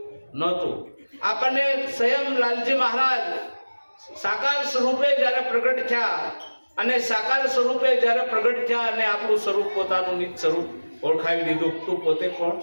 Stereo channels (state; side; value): inverted; both; correlation -1.00